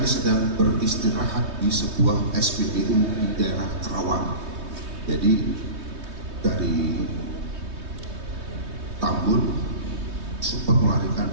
sedang beristirahat di sebuah SPBU di daerah Kerawang. Jadi dari Tambun sempat melarikan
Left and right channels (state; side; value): late; left; 3.2 ms